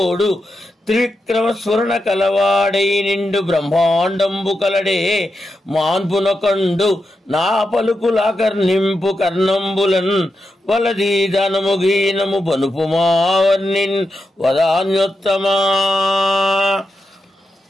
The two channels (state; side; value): normal; both; correlation 0.87